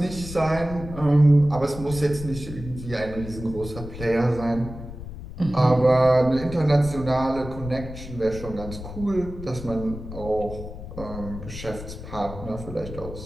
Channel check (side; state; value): left; noise; rumble, 11 dB below the sound